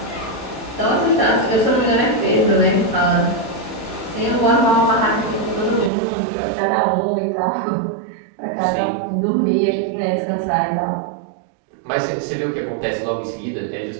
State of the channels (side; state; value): left; drops out; at 5.9 s